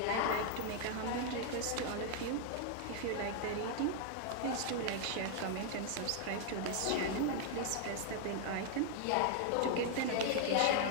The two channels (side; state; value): both; different; correlation 0.00